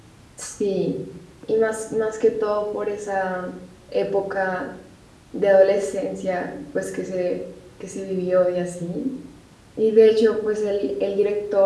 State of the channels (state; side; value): identical; both; correlation 1.00